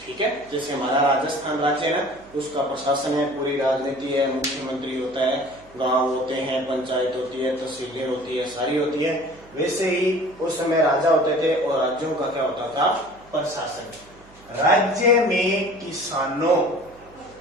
ठीक है, जैसे हमारा राजस्थान राज्य है ना, उसका प्रशासन है, पूरी राजनीति है, मुख्यमंत्री होता है, गांव होते हैं, पंचायत होती है, तहसीलें होती है, सारी होती है। वैसे ही उस समय राजा होते थे और राज्यों का क्या होता था? प्रशासन। राज्य में किसानों,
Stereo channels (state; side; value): noise; right; hum, 25 dB below the sound